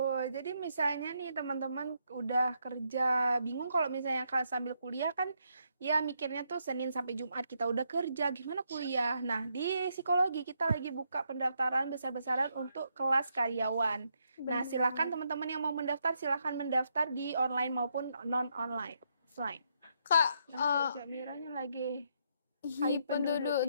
Jadi misalnya nih teman-teman udah kerja, bingung kalau misalnya sambil kuliah kan ya mikirnya tuh Senin sampai Jumat kita udah kerja, gimana kuliah? Nah, di psikologi kita lagi buka pendaftaran besar-besaran untuk kelas karyawan. Nah, silakan teman-teman yang mau mendaftar silahkan mendaftar di online maupun non-online. Offline. Kak, Jamiranya lagi Hai penduduk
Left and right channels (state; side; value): inverted; both; correlation -0.77